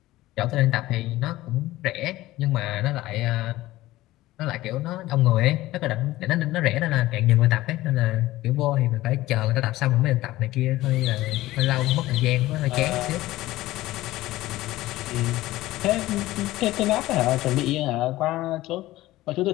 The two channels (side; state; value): right; quieter; 16.9 dB